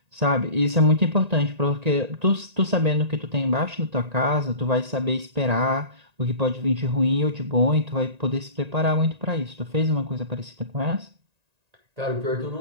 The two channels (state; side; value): late; left; 1.9 ms